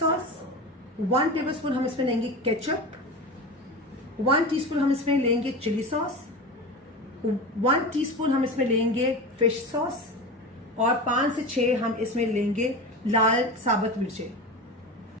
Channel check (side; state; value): both; normal; correlation 0.27